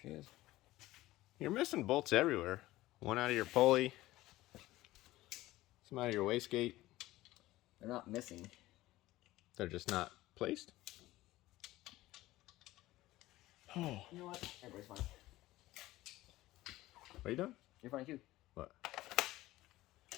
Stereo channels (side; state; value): right; quieter; 17.0 dB